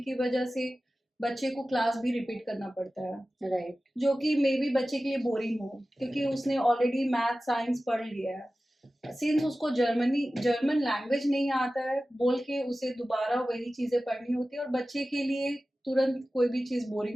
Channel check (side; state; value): both; normal; correlation 0.95